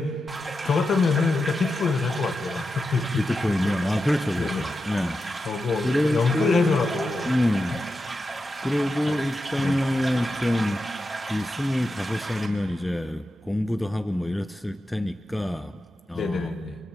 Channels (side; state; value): both; normal; correlation 0.89